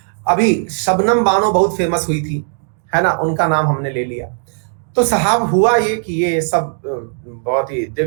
अभी शबनम बानो बहुत फेमस हुई थी, है ना, उनका नाम हमने ले लिया। तो साहब हुआ ये कि ये सब बहुत ही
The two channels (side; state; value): left; silent; digital silence